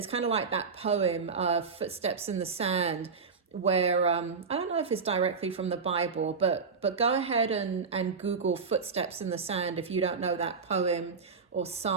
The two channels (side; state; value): left; quieter; 5.1 dB